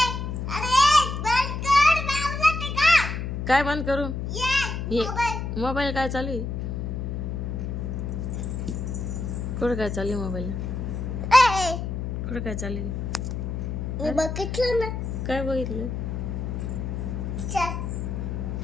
अरे बंद कर. बाबूला टिका. काय बंद करू? ये ये. मोबाईल. मोबाईल काय चालू आहे? कुठं काय चालू आहे मोबाईलला? ए कुठं काय चालू आहे? मी बघितलं ना. काय बघितलं?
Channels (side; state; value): left; noise; hum, 3 dB below the sound